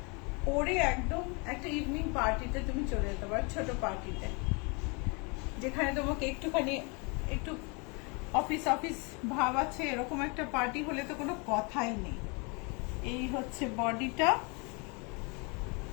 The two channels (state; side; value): quieter; right; 31.6 dB